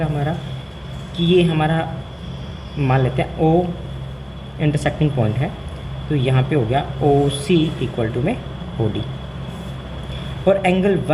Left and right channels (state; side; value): identical; both; correlation 1.00